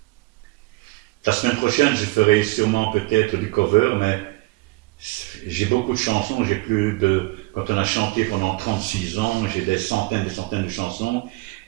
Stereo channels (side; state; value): left; quieter; 22.7 dB